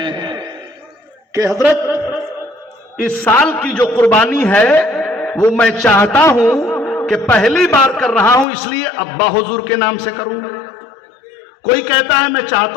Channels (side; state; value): right; drops out; at 8.5 s